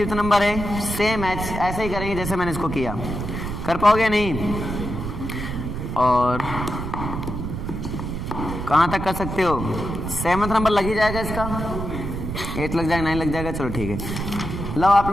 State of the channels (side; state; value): right; noise; rumble, 5 dB below the sound